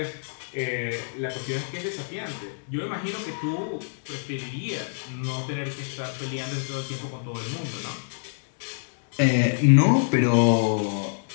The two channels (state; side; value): silent; right; digital silence